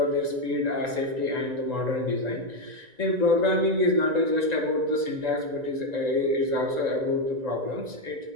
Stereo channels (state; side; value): late; left; 1.9 ms